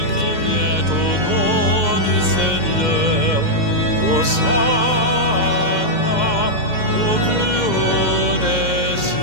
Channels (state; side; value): late; left; 2.1 ms